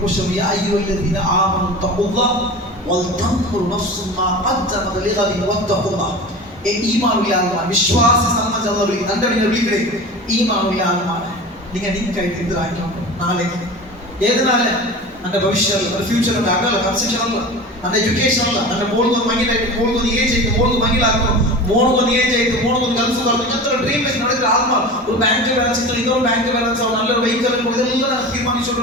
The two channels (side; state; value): both; normal; correlation 0.33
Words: ക്വസ്റ്റ്യൻ യാ അയ്യുഹല്ലദീന ആമനു തഖുല്ലാഹ വൽതൻദുർ നഫ്സും മാ ഖദ്ദമത് ലിഗദിൻ വത്തഖുല്ലാഹ്. ഈമാനുള്ള ആത്മാ വിശ്വാസ സംബന്ധമുള്ള എൻ്റെ വിളിക്കടേ ഈമാനുള്ള ആത്മാവ് നിങ്ങൾ നിങ്ങൾക്കായിട്ട് എതിരാക്കണം. നാളെ ഏത് നാളെ എൻ്റെ ഭവിഷ്യല്ല എൻ്റെ ഫ്യൂച്ചറിൻ്റെ അകല കൺസെപ്ഷനല്ല എൻ്റെ എഡ്യൂക്കേഷനല്ല എൻ്റെ മോൾക്കൊന്ന് മങ്ങിലായിട്ട് മോൾക്കൊന്ന് ഏജ് ആയിട്ട് മോൾക്ക് മങ്ങിലാക്കണം മോൾക്കൊന്ന് ഏജ് ആയിട്ട് മോൾക്കൊന്ന് ഗൾഫ് പറഞ്ഞു ഇങ്ങനത്തെ ഡ്രീം വെച്ച് നടക്കുന്ന ആത്മാ ഒരു ബാങ്ക് ബാലൻസ് ഇന്നൊരു ബാങ്ക് ബാലൻസ് ആവും നല്ലൊരു വെഹിക്കൽ ഇതെല്ലാം